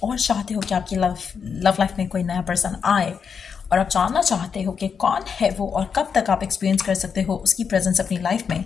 और चाहते हो कि आपकी लव लाइफ में कोई नया पर्सन आए और आप जानना चाहते हो कि कौन है वो और कब तक आप एक्सपीरियंस कर सकते हो उसकी प्रेजेंस अपनी लाइफ में,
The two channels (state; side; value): quieter; right; 6.5 dB